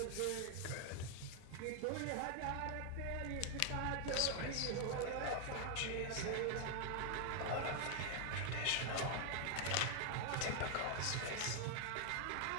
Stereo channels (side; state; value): both; different; correlation 0.00